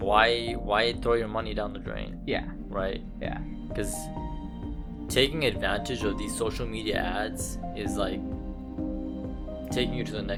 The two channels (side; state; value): both; identical; correlation 1.00